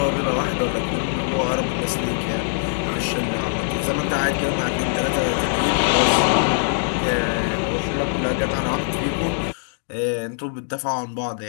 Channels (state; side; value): silent; right; digital silence